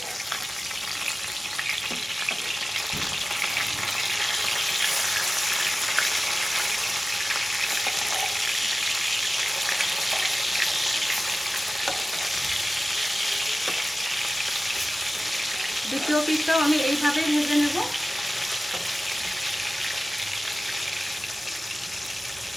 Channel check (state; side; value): normal; both; correlation 0.96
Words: দ্বিতীয় পিঠটাও আমি এইভাবেই ভেজে নেব।